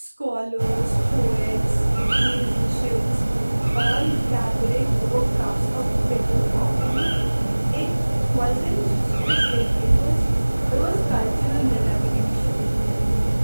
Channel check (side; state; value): both; inverted; correlation -1.00